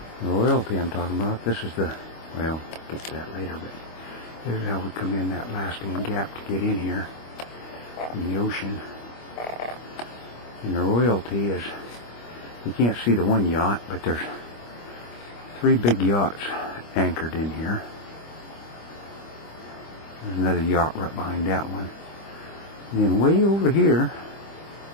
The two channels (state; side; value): late; right; 25 ms